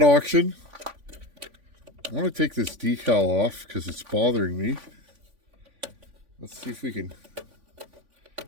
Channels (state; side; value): late; left; 3.5 ms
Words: auction. I want to take this decal off because it's bothering me. Let's see if we can. I